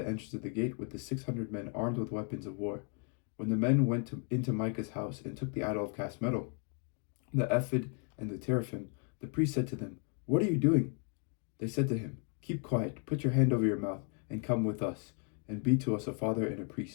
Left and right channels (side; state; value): right; quieter; 40.0 dB